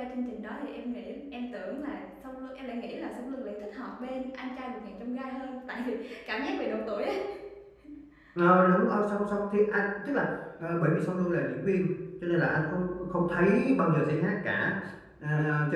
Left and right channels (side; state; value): both; identical; correlation 1.00